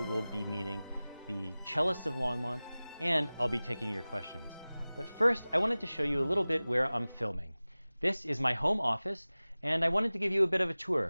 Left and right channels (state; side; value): inverted; both; correlation -0.98